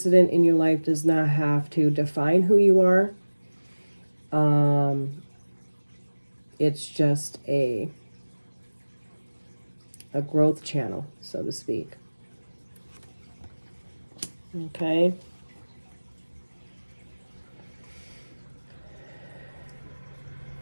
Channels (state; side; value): inverted; both; correlation -1.00